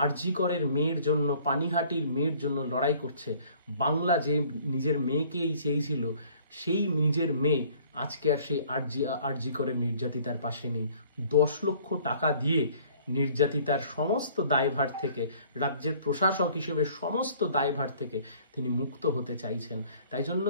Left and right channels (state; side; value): inverted; both; correlation -0.55